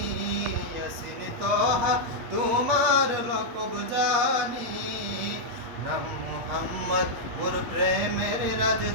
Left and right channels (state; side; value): late; left; 8.5 ms